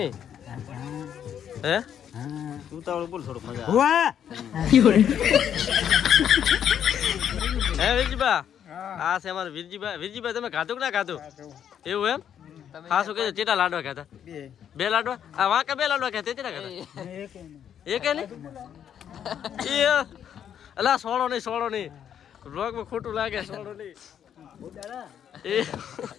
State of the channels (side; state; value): right; quieter; 9.1 dB